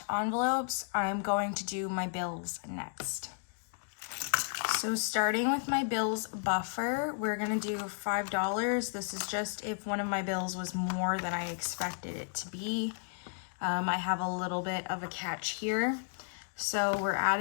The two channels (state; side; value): silent; right; digital silence